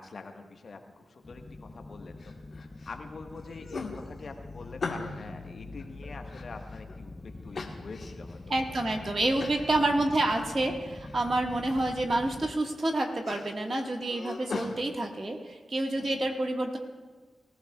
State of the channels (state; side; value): normal; both; correlation 0.91